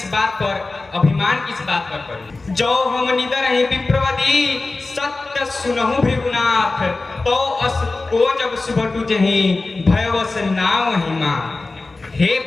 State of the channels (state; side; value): quieter; right; 3.4 dB